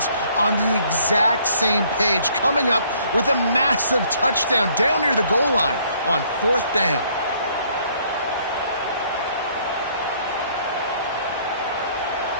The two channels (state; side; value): inverted; both; correlation -0.63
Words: on the exact same page coming up with a massive touchdown down near the goal line on fourth down.